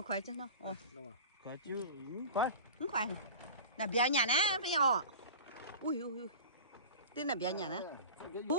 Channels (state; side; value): inverted; both; correlation -0.36